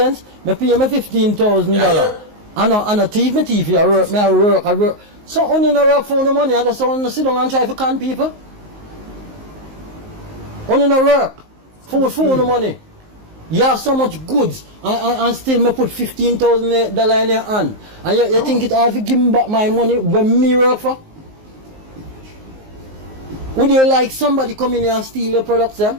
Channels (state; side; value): late; left; 19 ms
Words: Me pay me $15,000. I no thief, me thief, I work. So only no work for the money, I just want to sit down and try to con people. Only no work for the money. You have so much goods and still me put $15,000 in your hand. And you think it hard to give me back my money when me work for? Would you like somebody come in here and steal your products then?